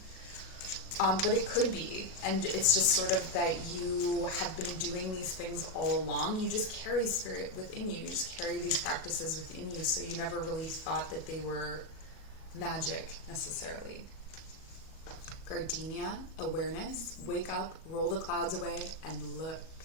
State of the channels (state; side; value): late; right; 37 ms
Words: But it could be. And it's just sort of that you have been doing these things all along. You just carry spirit within you. You just carry these practices within you. So you never really thought that they were magic necessarily. Gardenia, awareness, wake up, roll the clouds away, and look.